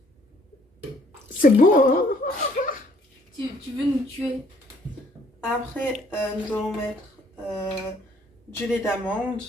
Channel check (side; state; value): both; normal; correlation 0.62